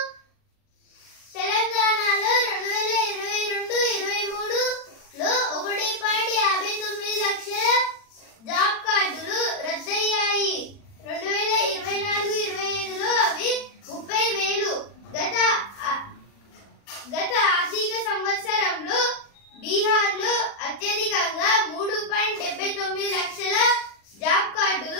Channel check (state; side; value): late; right; 40 ms